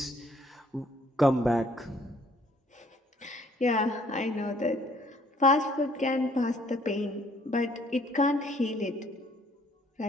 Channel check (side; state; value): both; normal; correlation 0.62